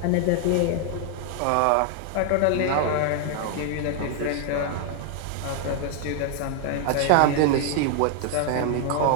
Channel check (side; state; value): both; different; correlation 0.00